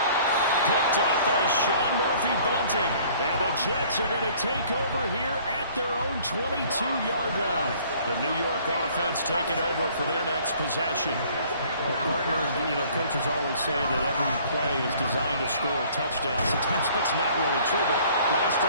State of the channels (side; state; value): both; inverted; correlation -0.55